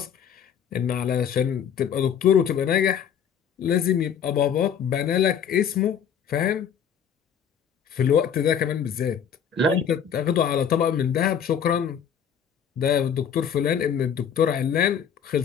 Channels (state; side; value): quieter; right; 8.0 dB